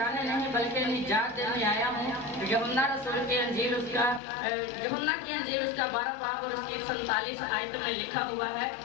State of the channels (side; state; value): right; drops out; at 4.2 s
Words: नहीं बल्कि निजात देने आया हूँ। यूहन्ना रसूल की अंजील उसका यूहन्ना की अंजील उसका 12 बाब और उसकी 47 आयत में लिखा हुआ है,